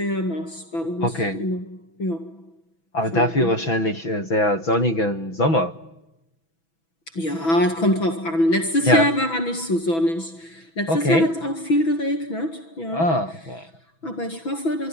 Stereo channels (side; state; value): right; late; 6.1 ms